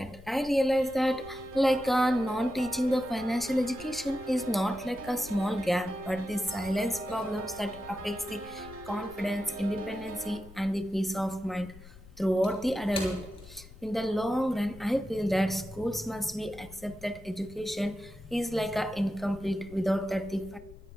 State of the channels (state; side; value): noise; left; rumble, 19 dB below the sound